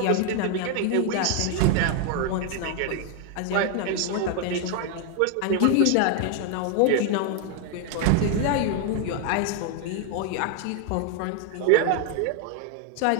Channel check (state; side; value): different; both; correlation 0.01